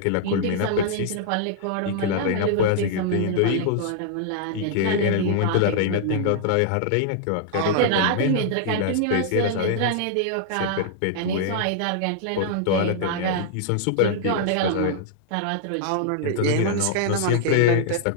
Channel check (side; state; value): both; different; correlation -0.01